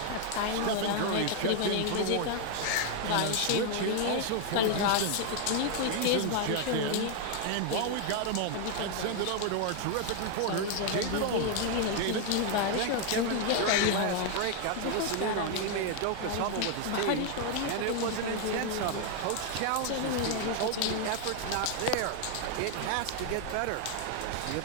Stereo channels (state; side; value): different; both; correlation 0.00